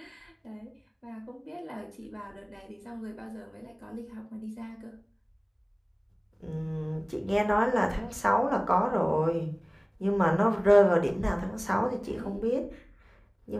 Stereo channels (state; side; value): identical; both; correlation 1.00